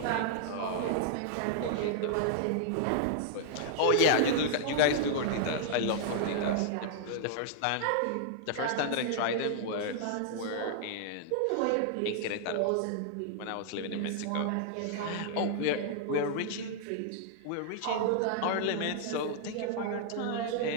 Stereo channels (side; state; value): both; different; correlation -0.01